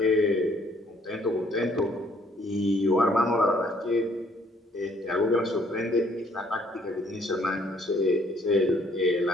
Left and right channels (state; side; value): normal; both; correlation 0.63